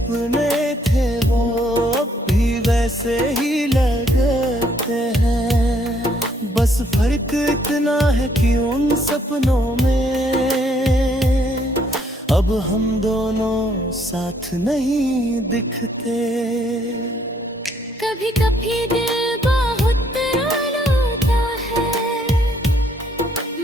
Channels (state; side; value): normal; both; correlation 0.68